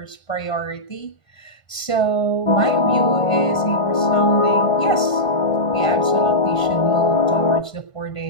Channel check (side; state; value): right; late; 1.5 ms